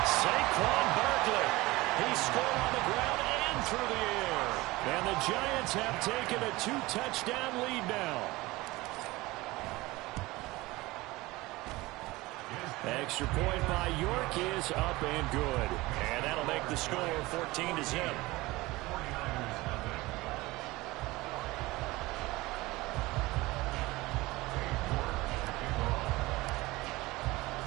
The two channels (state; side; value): quieter; left; 20.5 dB